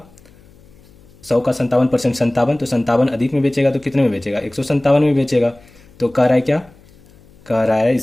100 का 57% 57, तो 57 अधिक में बेचेगा तो कितने में बेचेगा, 157 में बेचेगा। तो कह रहा है क्या, कह रहा है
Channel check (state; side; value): noise; left; hum, 27 dB below the sound